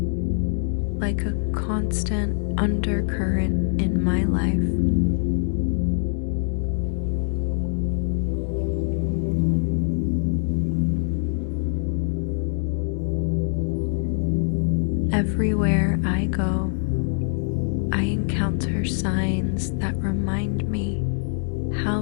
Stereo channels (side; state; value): right; silent; digital silence